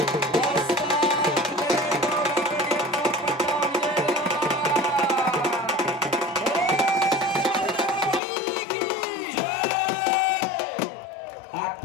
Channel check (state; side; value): drops out; right; at 8.2 s